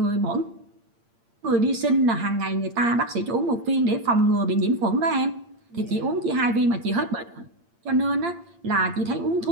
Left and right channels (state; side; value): late; left; 8.7 ms